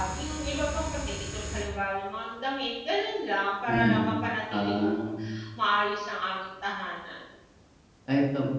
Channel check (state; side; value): identical; both; correlation 1.00